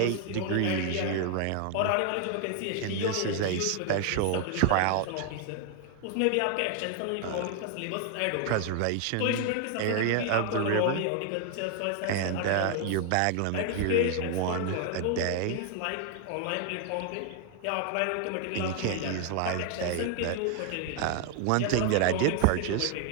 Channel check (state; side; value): different; both; correlation 0.00